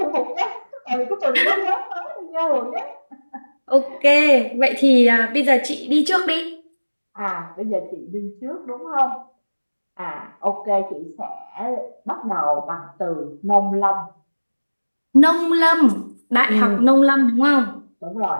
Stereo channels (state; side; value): inverted; both; correlation -1.00